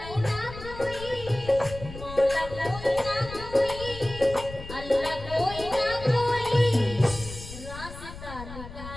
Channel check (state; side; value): noise; left; rumble, 13 dB below the sound